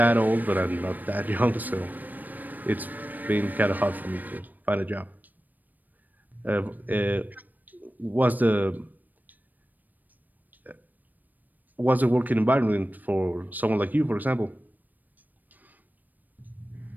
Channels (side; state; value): left; late; 0.086 ms